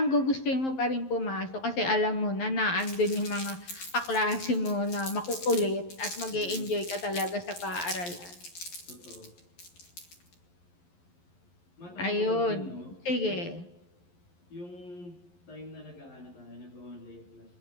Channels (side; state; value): right; late; 11 ms